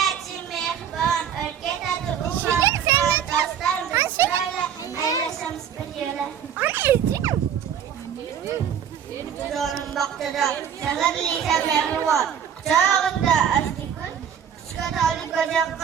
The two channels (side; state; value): left; quieter; 8.5 dB